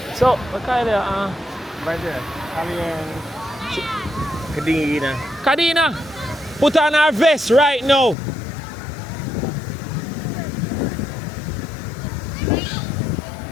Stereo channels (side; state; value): right; drops out; at 8.2 s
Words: So, what kind of Right there. Kadina. Kadina, put on our vest right now.